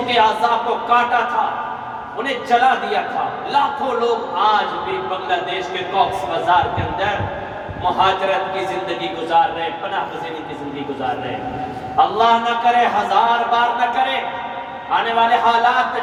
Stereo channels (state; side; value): identical; both; correlation 1.00